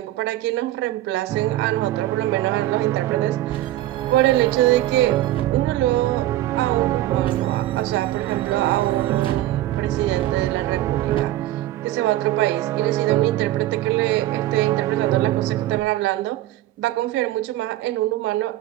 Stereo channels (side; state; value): left; quieter; 15.0 dB